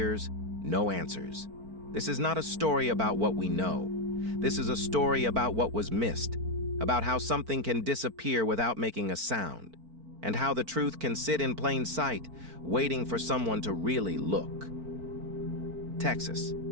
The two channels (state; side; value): late; left; 4.5 ms